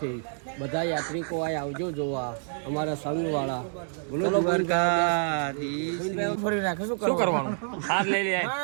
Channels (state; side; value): silent; left; digital silence